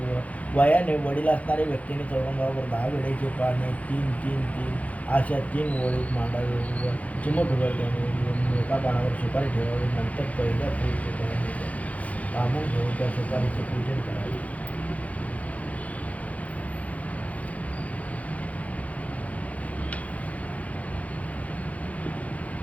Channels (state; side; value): late; right; 0.069 ms